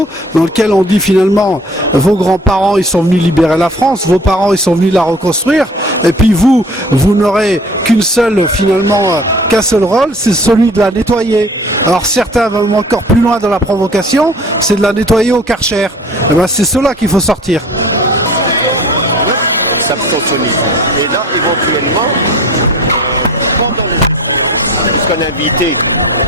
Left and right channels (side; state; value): both; normal; correlation 0.46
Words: dans lequel on dit finalement, vos grands-parents ils sont venus libérer la France, vos parents ils sont venus la reconstruire, et puis vous n'aurez qu'un seul rôle, c'est celui de la nettoyer. Alors certains vont encore plus loin dans la provocation, c'est de la nettoyer au Karcher. Et ben c'est cela qu'il faut sortir. Et là, éventuellement, puisqu'on a invité